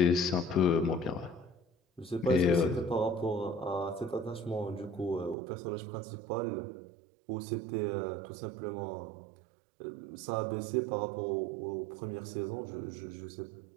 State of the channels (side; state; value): left; drops out; at 5.4 s